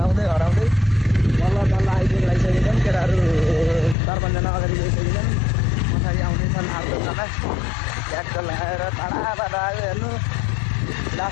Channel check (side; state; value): right; drops out; at 4.0 s